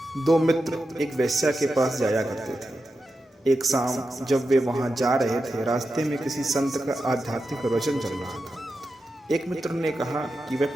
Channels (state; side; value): normal; both; correlation 0.90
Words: दो मित्र एक वेश्या के पास जाया करते थे। एक शाम जब वे वहां जा रहे थे, रास्ते में किसी संत का आध्यात्मिक प्रवचन चल रहा था। एक मित्र ने कहा कि वह